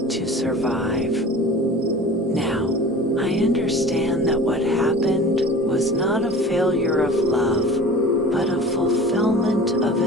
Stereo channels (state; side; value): normal; both; correlation 0.39